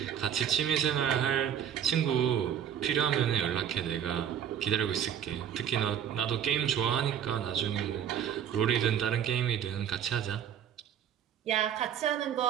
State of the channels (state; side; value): quieter; left; 9.2 dB